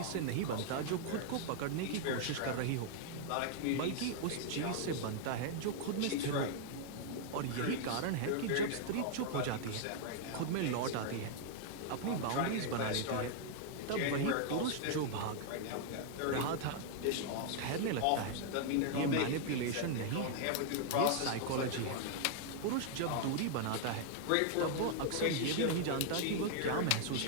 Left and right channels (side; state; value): both; different; correlation 0.00